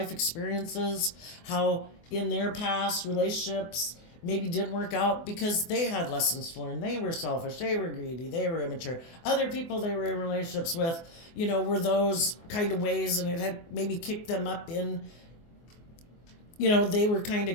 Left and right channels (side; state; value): right; late; 24 ms